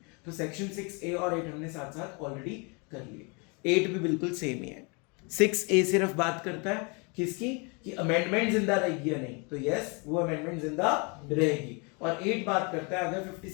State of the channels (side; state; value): right; quieter; 32.2 dB